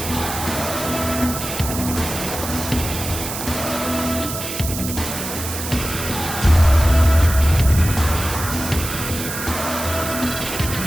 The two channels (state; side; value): noise; right; hiss, 6 dB below the sound